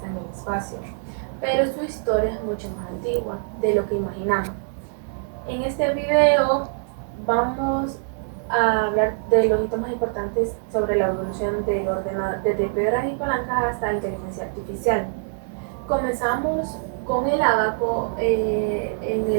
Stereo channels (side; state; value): left; silent; 62 dB below the other